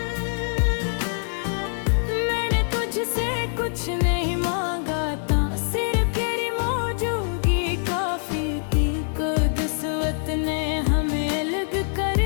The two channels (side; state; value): right; silent; digital silence